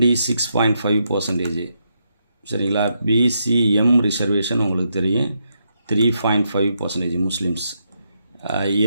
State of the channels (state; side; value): inverted; both; correlation -0.80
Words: சரிங்களா? பிசிஎம் ரிசர்வேஷன் உங்களுக்கு தெரியும், 3.5% முஸ்லீம்ஸ்.